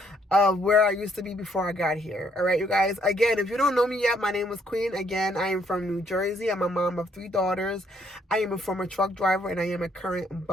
of where I used to be before I got here. All right, you guys. Again, if you don't know me yet, my name is Queen. Again, I am from New Jersey. I'm a mom of 3 daughters. I am a former truck driver and I am a current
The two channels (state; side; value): normal; both; correlation 0.69